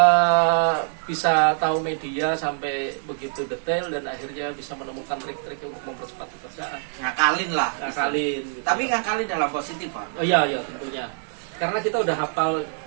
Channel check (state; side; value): silent; left; 62 dB below the other